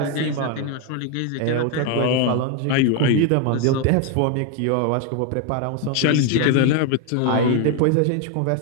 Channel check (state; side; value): different; both; correlation 0.01